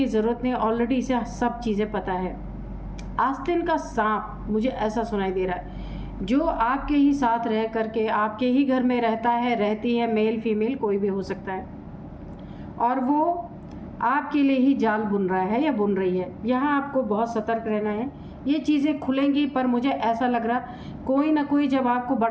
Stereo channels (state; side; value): identical; both; correlation 1.00